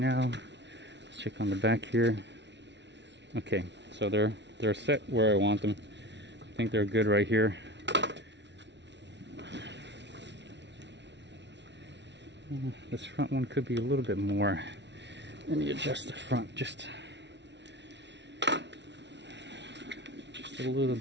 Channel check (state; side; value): late; left; 0.51 ms